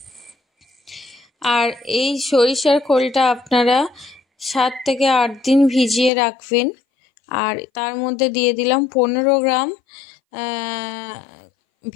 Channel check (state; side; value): drops out; right; at 6.1 s